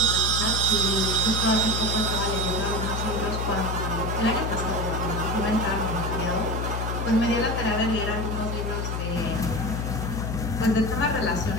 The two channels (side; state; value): left; noise; hum, 2 dB below the sound